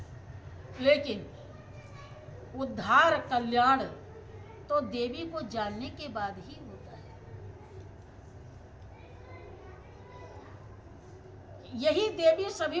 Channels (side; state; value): both; identical; correlation 1.00